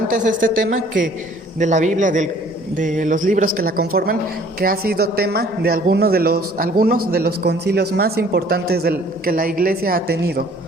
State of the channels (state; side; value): normal; both; correlation 0.55